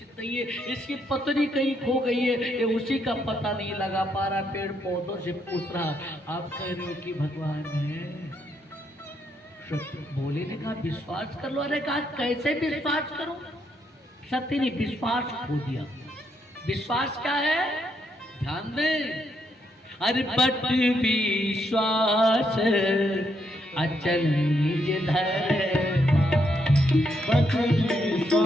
नहीं है, इसकी पत्नी कहीं खो गई है, ये उसी का पता नहीं लगा पा रहा। पेड़ पौधों से पूछ रहा, आप कह रहे हो कि भगवान है? बोले ने कहा विश्वास कर लो। अरे कहा कैसे विश्वास करो? सत्य ने विश्वास खो दिया। विश्वास क्या है? ध्यान दे। अरे बट विश्वास अचल निज धर्म, बट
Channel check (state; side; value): normal; both; correlation 0.76